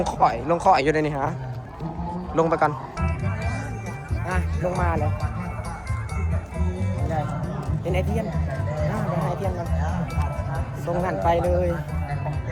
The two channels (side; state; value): both; identical; correlation 1.00